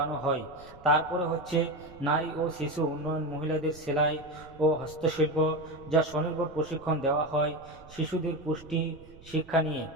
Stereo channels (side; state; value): right; noise; rumble, 21 dB below the sound